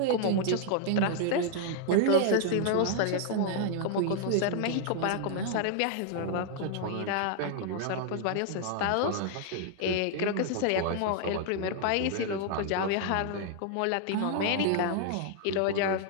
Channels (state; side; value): different; both; correlation -0.01